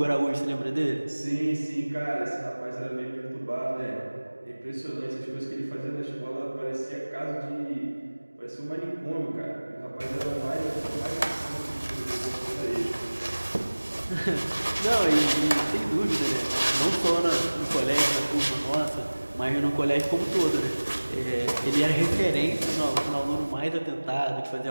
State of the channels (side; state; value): both; inverted; correlation -1.00